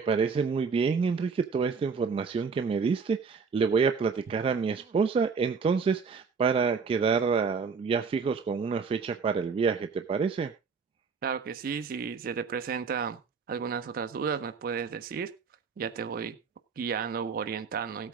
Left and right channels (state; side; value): quieter; left; 5.4 dB